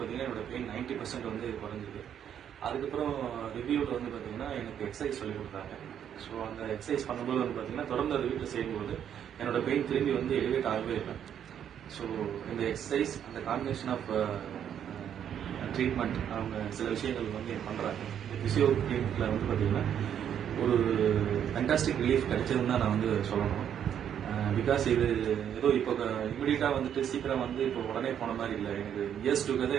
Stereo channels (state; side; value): quieter; left; 9.2 dB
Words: என்னோட பெயின் 90% வந்து குறைஞ்சிது. அதுக்கப்புறம் ரிவ்யூவில் வந்து பார்த்தீங்கன்னா எனக்கு எக்ஸசைஸ் சொல்லி கொடுத்தாங்க. ஸோ அந்த எக்ஸசைஸ் பண்ணும்போது வந்து பார்த்தீங்கன்னா தொடர்ந்து அதை வீட்டில் செய்யும்போது என்னோட பெயின் திரும்பி வந்து எலிவேட் ஆகவே இல்லை. ஸோ இந்த எக்ஸசைஸ், அந்த காம்பினேஷன் ஆஃப் ட்ரீட்மெண்ட், அவங்க சில விஷயங்கள் வந்து பண்ணுறாங்க. இந்த ஃபிசியோ கிளினிக்கில் வந்து பார்த்தீங்கன்னா ஒரு ஃபேன்டாஸ்டிக் ரிலீஃப் கிடைச்சதுன்னு தான் நான் வந்து சொல்லணும். பிகாஸ் இது ஏதோ இப்போ இமீடியட்டாக வந்துட்டு சீக்கிரம் வந்து இப்போ உடனே போன மாதிரி இல்லை. எனக்கு இயர்ஸ்